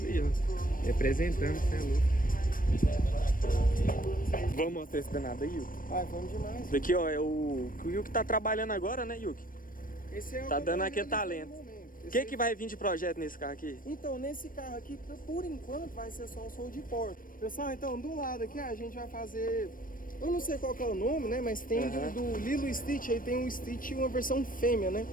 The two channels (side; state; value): right; late; 0.40 ms